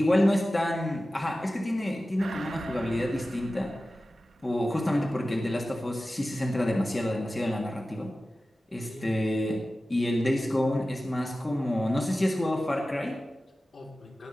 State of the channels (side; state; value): both; normal; correlation 0.95